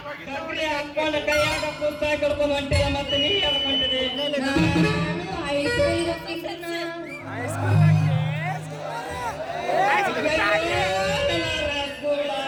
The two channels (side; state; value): both; identical; correlation 1.00